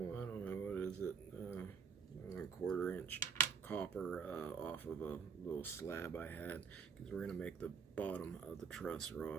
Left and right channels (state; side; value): quieter; left; 6.3 dB